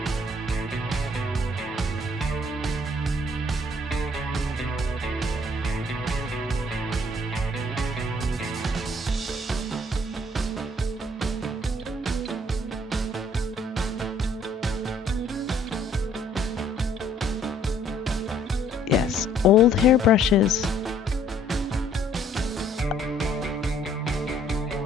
Yes, old hairbrushes.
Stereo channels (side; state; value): both; normal; correlation 0.61